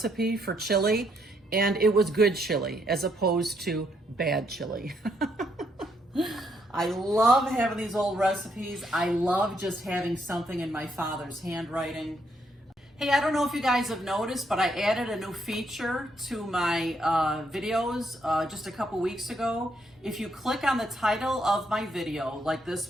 for chili, and it was good chili as opposed to bad chili. I love having these old recipes. I love just having something in my father's handwriting. Hey, I don't know if you guys have noticed, but I added a new feature to my videos just a couple weeks ago. If you click on the title of my video, like this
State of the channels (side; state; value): both; normal; correlation 0.74